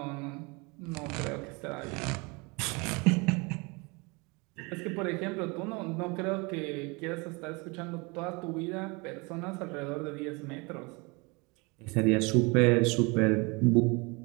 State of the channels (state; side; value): quieter; left; 28.1 dB